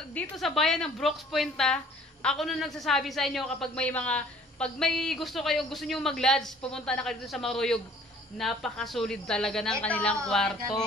dito sa bayan ng Brooks Point, ako na nagsasabi sa inyo kapag may gusto nyo mag-lodge, pumunta na kayo dito sa Maruyog. Napakasulit talaga ng kanilang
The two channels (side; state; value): both; normal; correlation 0.54